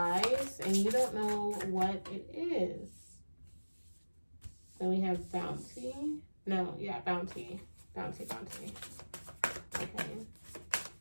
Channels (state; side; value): inverted; both; correlation -1.00